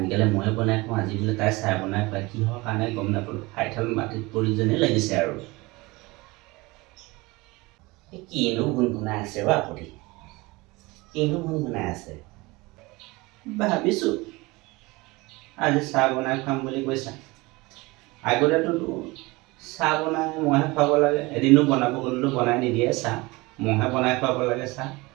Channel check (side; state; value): left; quieter; 23.0 dB